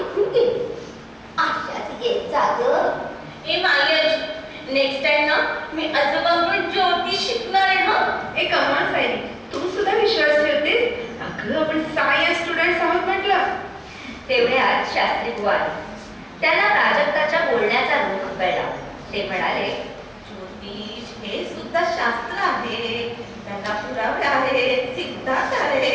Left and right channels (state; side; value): identical; both; correlation 1.00